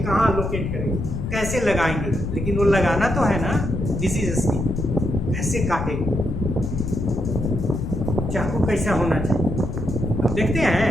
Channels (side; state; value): left; noise; rumble, 4 dB below the sound